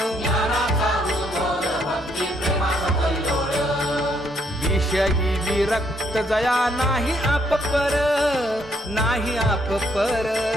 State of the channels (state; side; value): normal; both; correlation 0.71